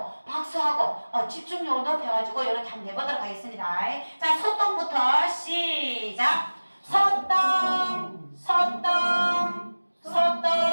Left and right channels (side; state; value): both; inverted; correlation -1.00